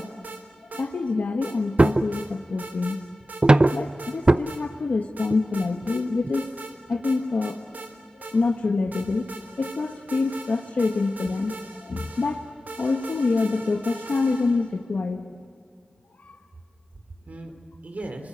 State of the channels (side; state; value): both; normal; correlation 0.94